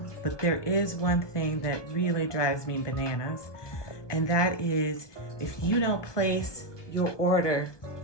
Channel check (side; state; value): right; late; 1.2 ms